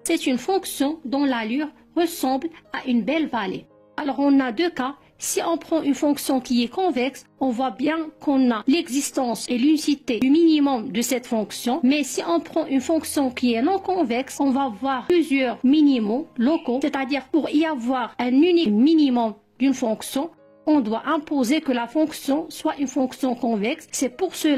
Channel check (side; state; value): both; identical; correlation 1.00